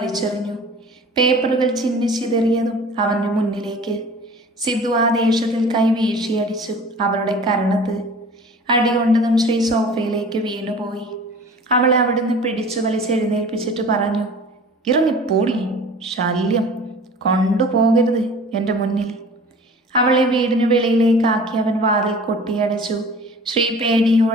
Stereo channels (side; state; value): both; normal; correlation 0.44